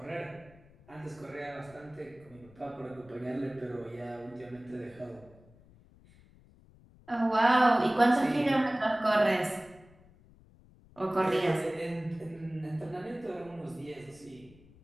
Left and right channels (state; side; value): noise; left; rumble, 25 dB below the sound